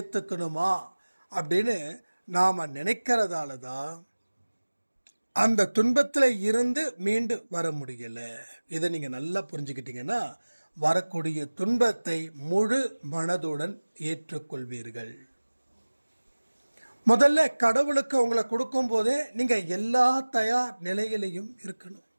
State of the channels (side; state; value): both; inverted; correlation -1.00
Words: அப்படின்னு நாம் நினைக்கிறதால தான் அந்த துன்பத்தில் இருந்து மீண்டு வர முடியல. இதை நீங்கள் நல்லா புரிஞ்சுக்கிட்டீங்கன்னா வரக்கூடிய துன்பத்தை முழு மனதுடன் ஏற்றுக்கொள்வீர்கள். முதல்ல கடவுளுக்கு உங்களை கொடுக்கும் போதே நீங்கள் எல்லா தயார் நிலையிலையும் இருக்கணும்.